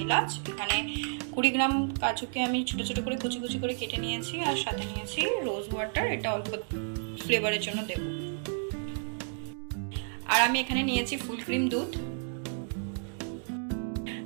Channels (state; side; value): silent; left; digital silence